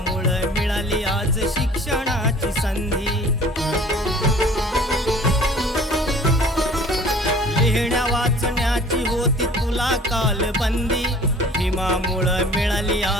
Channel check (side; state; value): both; normal; correlation 0.49